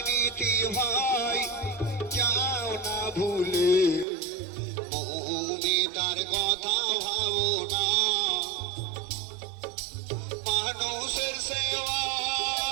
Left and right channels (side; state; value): left; drops out; at 4.0 s